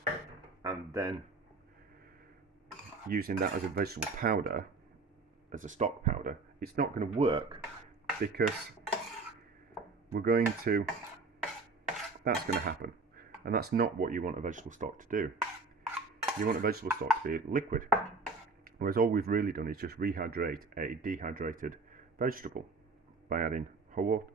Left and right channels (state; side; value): quieter; left; 3.8 dB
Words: and then using that as a vegetable powder, as a stock powder, it's not going to work because we're going to, that's going to happen, and that's not what you want a vegetable stock to do. You want a vegetable stock to be liquid, whereas all we've really done is just rehydrate a dehydrated vegetable by adding